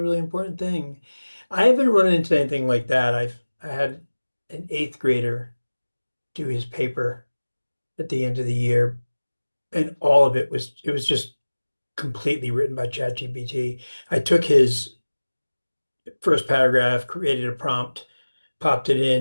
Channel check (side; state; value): both; inverted; correlation -1.00